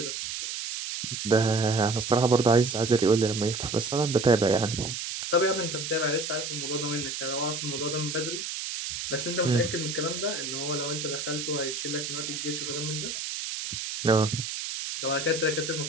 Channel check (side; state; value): right; noise; hiss, 5 dB below the sound